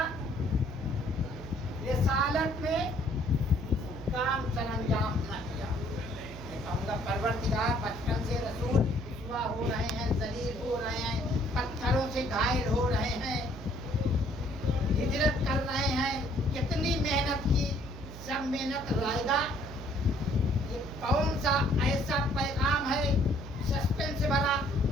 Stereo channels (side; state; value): right; noise; hum, 13 dB below the sound